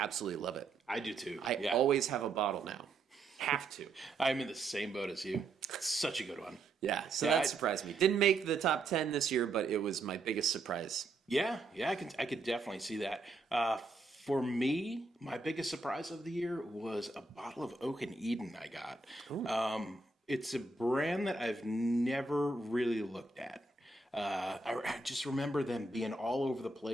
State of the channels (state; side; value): quieter; left; 3.4 dB